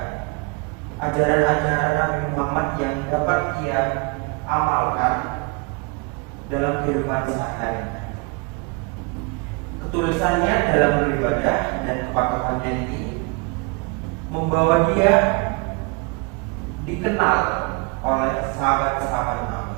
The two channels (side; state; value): left; quieter; 30.8 dB